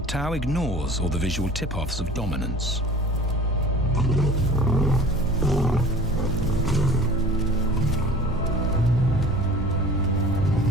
Tao ignores all the visual tip-offs of dominance.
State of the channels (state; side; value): normal; both; correlation 0.43